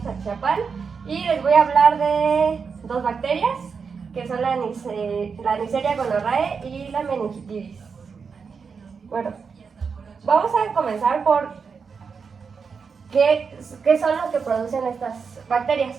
Atizapán, y les voy a hablar de dos bacterias, que son la Neisseria gonorrhoeae y la meningitis. Bueno, vamos a comenzar por qué son lo que producen estas bacterias.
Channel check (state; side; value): quieter; left; 5.6 dB